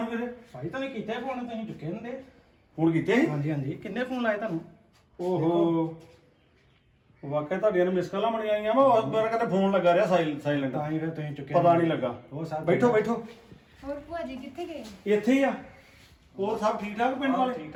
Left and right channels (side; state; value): both; identical; correlation 1.00